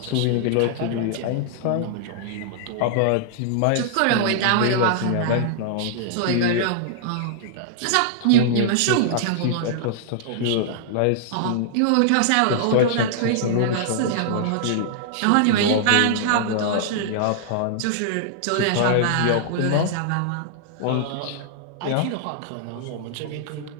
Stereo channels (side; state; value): both; different; correlation -0.01